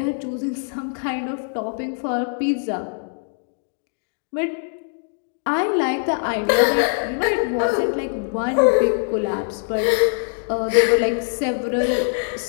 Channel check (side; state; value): right; silent; 64 dB below the other